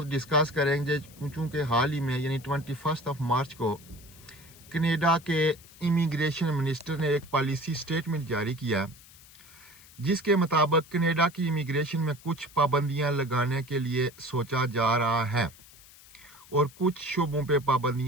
डिस्कस करेंगे, चूँकि हाल ही में यानी 21 मार्च को कनाडा के इमिग्रेशन मिनिस्टर ने एक पॉलिसी स्टेटमेंट जारी किया जिसके मुताबिक कनाडा की इमिग्रेशन में कुछ पाबंदियां लगाने के लिए सोचा जा रहा है और कुछ शोबों पे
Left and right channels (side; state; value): left; noise; hiss, 22 dB below the sound